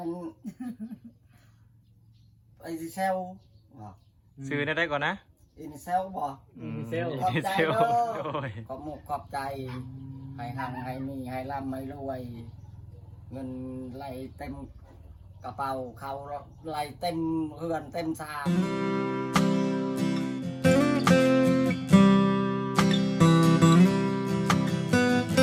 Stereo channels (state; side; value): identical; both; correlation 1.00